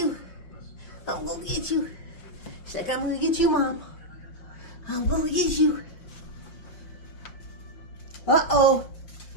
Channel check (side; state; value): right; late; 5.6 ms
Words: I'm gonna get you. She's like, I'm gonna get you, Mom. I'm gonna get you. Uh-oh.